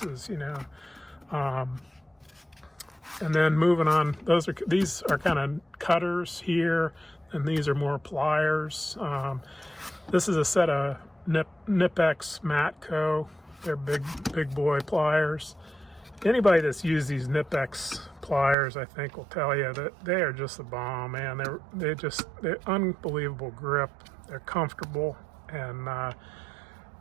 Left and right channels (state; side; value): drops out; left; at 18.6 s